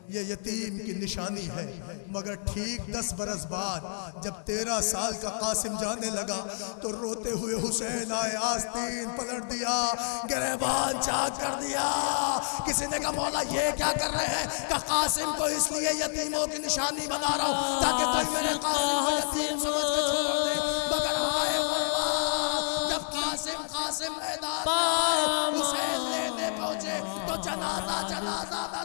یہ یتیم کی نشانی ہے۔ مگر ٹھیک 10 برس بعد جب 13 سال کا قاسم جانے لگا تو روتے ہوئے حسین آئے، آستین پلٹ دیا، گریبان چاک کر دیا۔ کسی نے کہا مولا یہ کیا کر رہے ہیں؟ کہ قاسم کو اس لیے یتیموں کی نشانی بنا رہا ہوں تاکہ کوئی میرے قاسم کو یتیم سمجھ کے چھوڑ دے۔ مگر آئے غربت، جب قاسم میدان میں آئے، حسین لینے پہنچے تو جنازہ نہ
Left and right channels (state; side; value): silent; right; 59 dB below the other